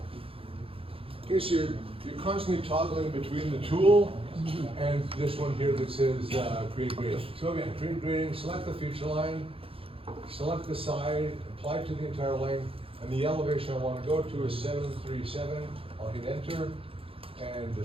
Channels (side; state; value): left; late; 0.27 ms